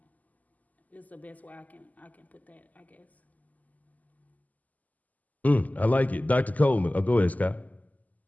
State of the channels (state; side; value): late; right; 0.078 ms